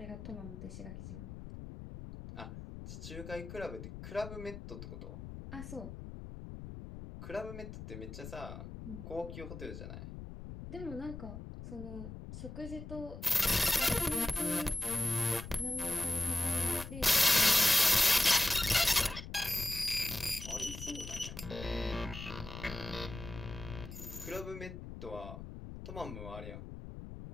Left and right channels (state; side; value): noise; left; rumble, 10 dB below the sound